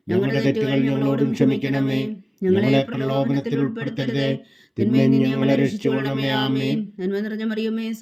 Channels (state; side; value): identical; both; correlation 1.00